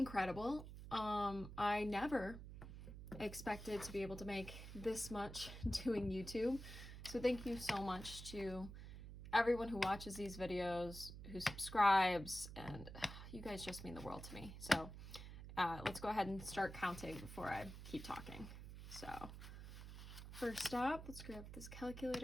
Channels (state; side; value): noise; right; hum, 11 dB below the sound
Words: I never expected to be able to make this much doing YouTube. So thank you so much to everyone who watches these videos, who subscribes, and you guys just mean the world to me. So let's go ahead and start counting before I keep talking. So first up, let's grab this